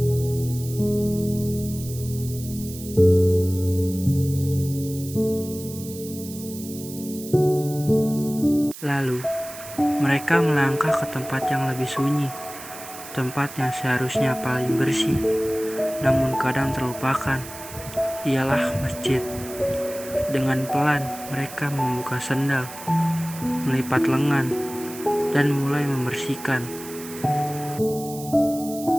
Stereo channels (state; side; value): noise; right; hiss, 14 dB below the sound